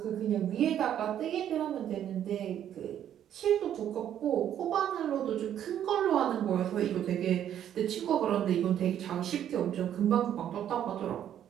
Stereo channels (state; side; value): quieter; left; 10.3 dB